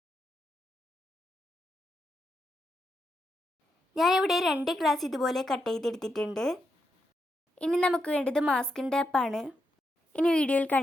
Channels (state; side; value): normal; both; correlation 0.84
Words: ഞാനിവിടെ 2 ഗ്ലാസ് ഇതുപോലെ കട്ട് ചെയ്തെടുത്തിട്ടുണ്ട്. ഇനി നമുക്ക് വേണ്ടത് മാസ്കിംഗ് ടേപ്പാണ്. ഇനി വീഡിയോയിൽ